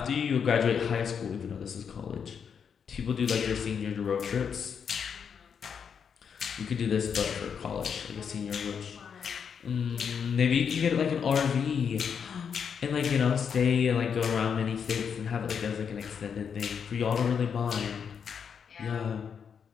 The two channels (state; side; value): quieter; right; 7.0 dB